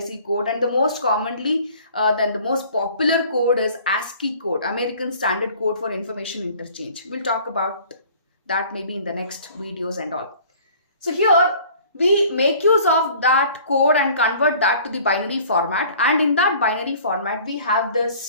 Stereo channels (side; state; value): both; inverted; correlation -0.50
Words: code, and the most commonly, the most popular code is ASCII code, American Standard Code for Information Interchange. We'll talk about that maybe in the next videos and all. So here, we make use of that code and convert that to the binary format. And in that binary format, we have